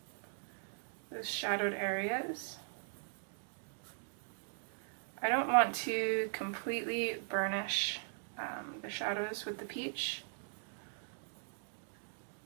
those shadowed areas. I don't want to completely burnish the shadows with the peach,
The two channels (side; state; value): left; silent; digital silence